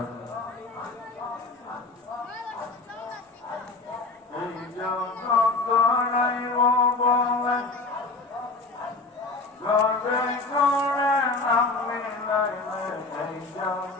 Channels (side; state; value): right; quieter; 3.6 dB